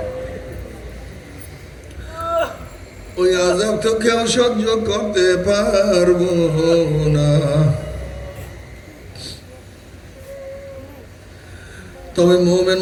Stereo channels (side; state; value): both; identical; correlation 1.00